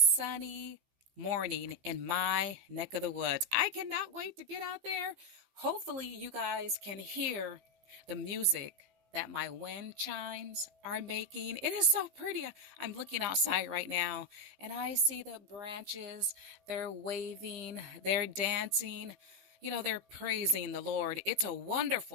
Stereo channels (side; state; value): left; late; 15 ms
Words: morning in my neck of the woods. I cannot wait to get out there. Hopefully, you guys can hear the music that my wind chimes are making. It is so pretty. I'm looking outside right now and I see the branches. They're waving, they're dancing. They're praising the Lord. It's a